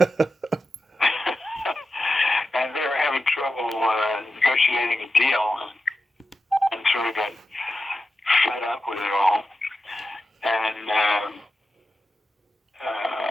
And they were having trouble negotiating a deal, and sort of got fed up with it all. And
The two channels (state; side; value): normal; both; correlation 0.91